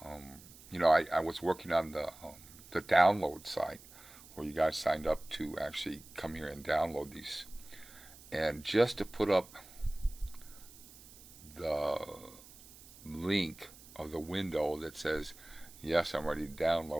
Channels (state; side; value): noise; right; hiss, 20 dB below the sound